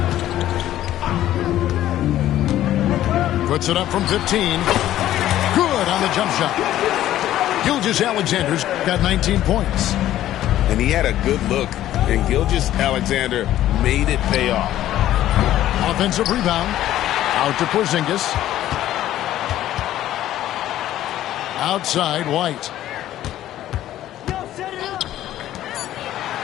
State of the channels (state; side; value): quieter; right; 13.1 dB